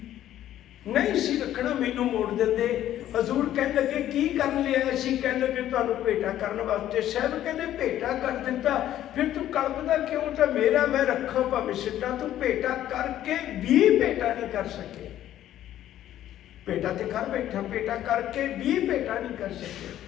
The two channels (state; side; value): quieter; right; 12.3 dB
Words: ਨਹੀਂ ਸੀ ਰੱਖਣਾ, ਮੈਨੂੰ ਮੋੜ ਦਿੰਦੇ। ਹਜ਼ੂਰ ਕਹਿਣ ਲੱਗੇ ਕੀ ਕਰਨ ਲਿਆ ਸੀ? ਕਹਿਣ ਲੱਗੇ ਤੁਹਾਨੂੰ ਭੇਟਾ ਕਰਨ ਵਾਸਤੇ। ਸਾਹਿਬ ਕਹਿੰਦੇ ਭੇਟਾ ਕਰ ਦਿੱਤਾ, ਫਿਰ ਤੂੰ ਕਲਪਦਾ ਕਿਉਂ? ਤਾਂ ਮੇਰਾ ਮੈਂ ਰੱਖਾਂ ਭਾਵੇਂ ਸਿੱਟਾਂ, ਤੂੰ ਭੇਟਾ ਕਰਕੇ ਵੀ ਭੇਟਾ ਨਹੀਂ ਕਰ ਸਕੇ। ਭੇਟਾ ਤੇ ਕਰ ਬੈਠਾ, ਭੇਟਾ ਕਰਕੇ ਵੀ ਭੇਟਾ ਨਹੀਂ ਕਰ ਸਕੇ।